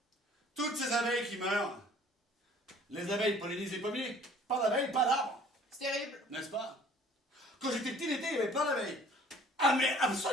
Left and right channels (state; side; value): normal; both; correlation 0.53